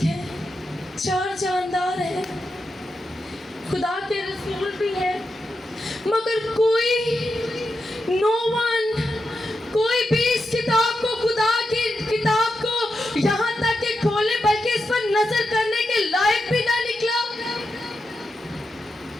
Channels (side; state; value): both; normal; correlation 0.88